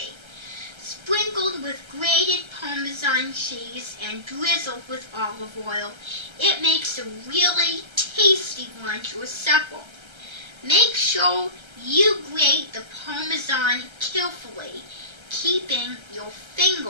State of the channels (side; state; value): left; late; 1.3 ms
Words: Sprinkled with grated Parmesan cheese and drizzled with olive oil, it makes a really tasty lunch or supper. Make sure you grate the Parmesan carefully, keeping your